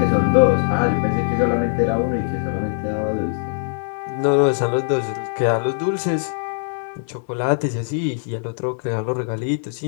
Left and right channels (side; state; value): right; silent; 65 dB below the other